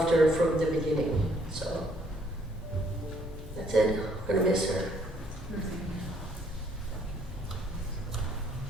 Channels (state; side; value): normal; both; correlation 0.66